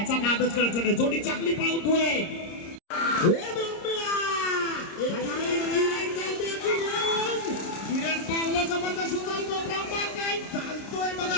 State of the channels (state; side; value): late; right; 30 ms